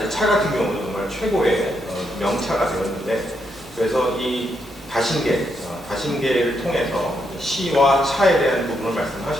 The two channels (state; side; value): normal; both; correlation 0.79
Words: 차 같은 경우는 정말 최고의 명차가 되었는데 그래서 이 다신계를 통해서 시와 차에 대한 부분을